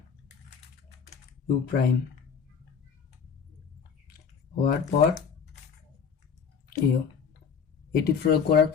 U prime হওয়ার পর এটি প্রয়োগ করার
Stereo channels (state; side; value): quieter; right; 6.5 dB